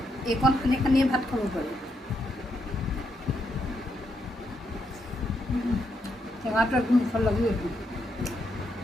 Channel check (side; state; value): both; normal; correlation 0.79